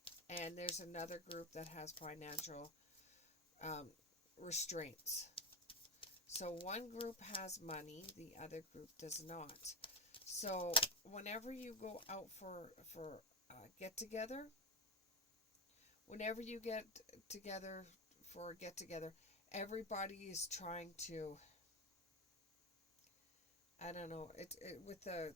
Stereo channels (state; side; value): normal; both; correlation 0.14